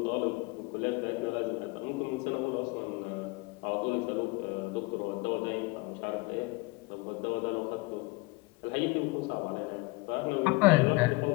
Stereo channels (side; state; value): right; quieter; 24.8 dB